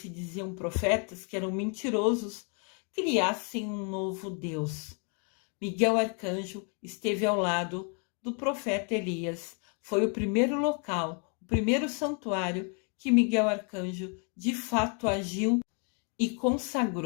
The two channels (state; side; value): quieter; right; 39.0 dB